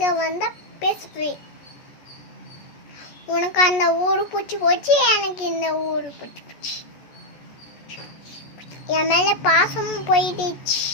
வந்தா பேசுவேன். உனக்கு அந்த ஊரு பிடிச்சி போச்சு, எனக்கு இந்த ஊரு பிடிச்சி போச்சு. என் மேல பாசமும் போயிடுச்சு.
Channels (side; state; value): right; late; 14 ms